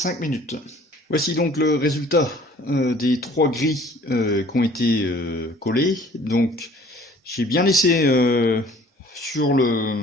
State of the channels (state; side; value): normal; both; correlation 0.53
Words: minutes. Voici donc le résultat des 3 grilles qui ont été collées. Donc j'ai bien laissé sur